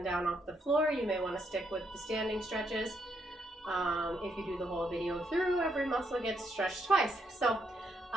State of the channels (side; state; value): both; normal; correlation 0.76